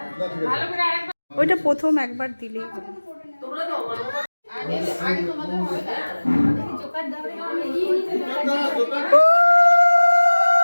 না, ঠিক আছে। ভালো করে আরেকবার ওইটা প্রথম একবার দিলেই তোমরা দাও, আগে আগে তোমাদের হবে না। জোকার দাও। না, দোকান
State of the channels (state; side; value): inverted; both; correlation -1.00